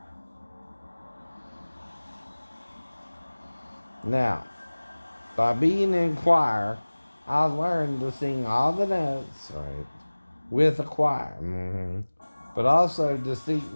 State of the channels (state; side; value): inverted; both; correlation -1.00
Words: Now, by being in choir, I learned to sing all the notes, right, with a choir. But also